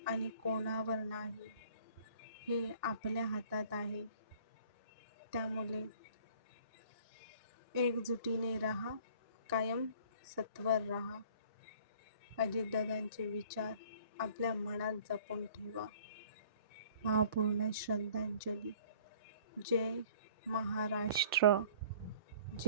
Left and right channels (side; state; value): both; inverted; correlation -0.53